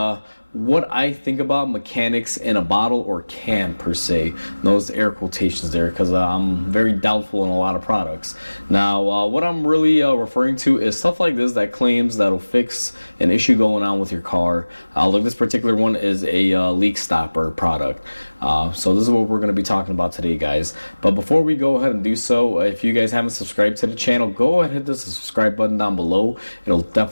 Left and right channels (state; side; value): inverted; both; correlation -1.00